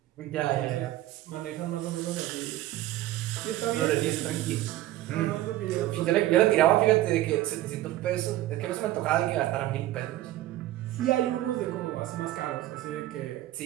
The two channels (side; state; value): left; quieter; 15.0 dB